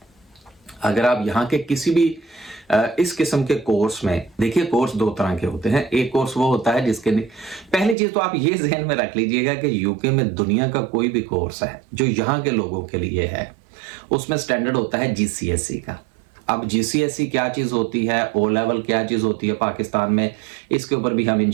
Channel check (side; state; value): left; drops out; at 8.0 s